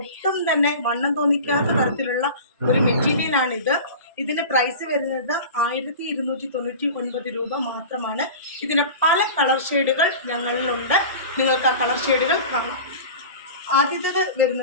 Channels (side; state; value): both; inverted; correlation -0.34